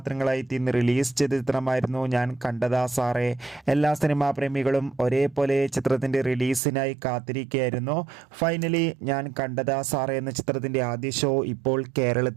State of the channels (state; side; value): drops out; left; at 6.6 s